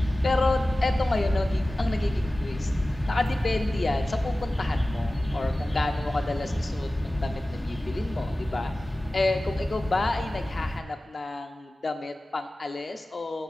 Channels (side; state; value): both; normal; correlation 0.97